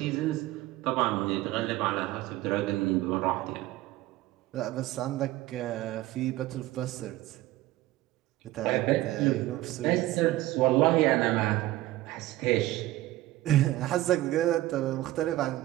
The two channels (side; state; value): left; quieter; 16.5 dB